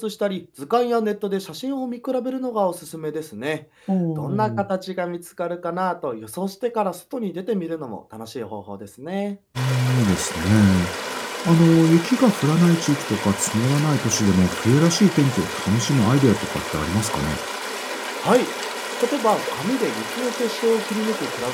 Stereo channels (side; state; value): both; identical; correlation 1.00